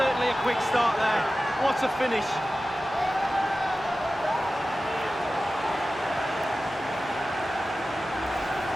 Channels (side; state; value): both; normal; correlation 0.95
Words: a quick start there. What a finish.